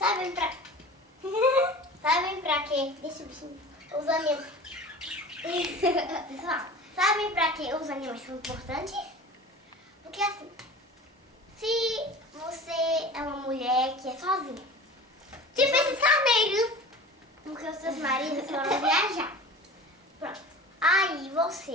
pra quê? Deixa o bichinho. Os animais. Pessoal, sabem pra que os animais são importantes? Porque assim, se você é uma mulher que é sozinha, tipo esses carneiros, porque os seus maridos foram viajar. Pronto. Aí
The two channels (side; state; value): both; normal; correlation 0.37